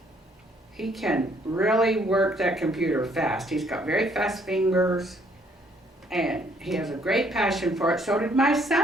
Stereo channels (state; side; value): normal; both; correlation 0.66